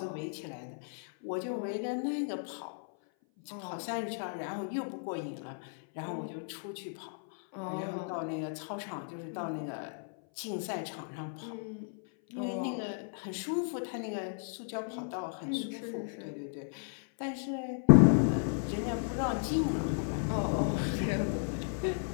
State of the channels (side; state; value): right; silent; 55 dB below the other